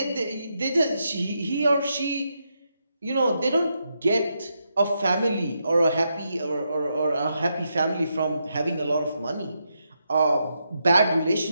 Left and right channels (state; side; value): inverted; both; correlation -0.83